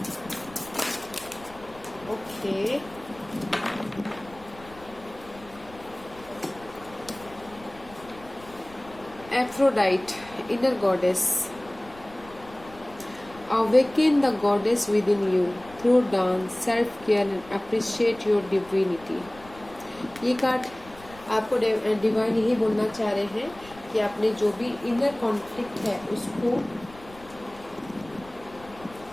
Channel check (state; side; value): noise; left; rumble, 21 dB below the sound